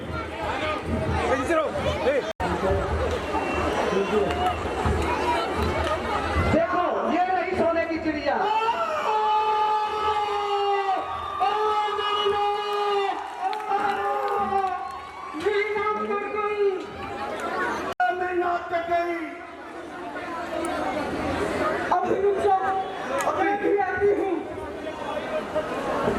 देखो ये रही सोने की चिड़िया। अभी रुक जाओ, अभी भी आती हूँ।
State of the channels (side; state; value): both; identical; correlation 1.00